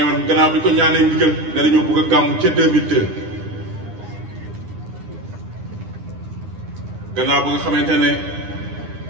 gannaaw bi ko ñaanee ndigal ne dañoo bëgg a gàmmu ca 2002 gannaaw ba nga xamante ne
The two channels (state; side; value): late; left; 9.9 ms